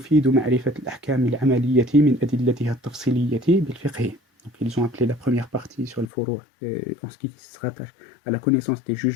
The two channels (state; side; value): drops out; right; at 6.1 s